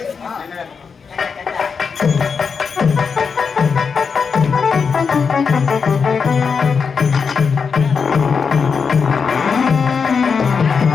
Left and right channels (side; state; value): right; quieter; 5.7 dB